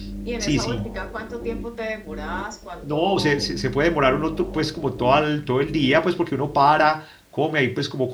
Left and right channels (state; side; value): identical; both; correlation 1.00